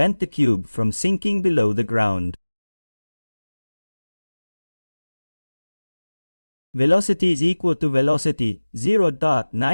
the cube from sinking below the ground. Velocity is equal to velocity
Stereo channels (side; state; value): both; inverted; correlation -1.00